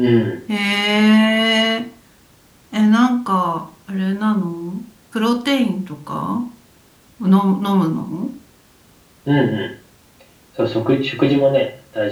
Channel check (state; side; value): identical; both; correlation 1.00